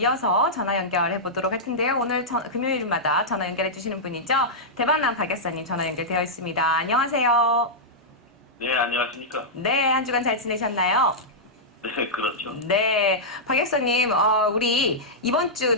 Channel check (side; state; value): both; normal; correlation -0.10